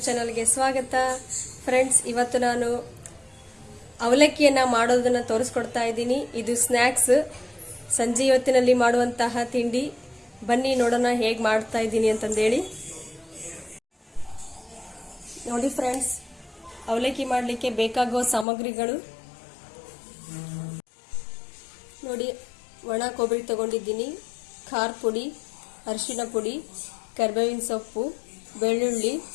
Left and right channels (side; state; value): right; drops out; at 18.4 s